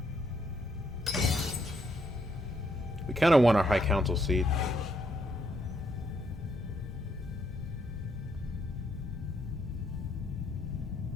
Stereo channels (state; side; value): normal; both; correlation 0.74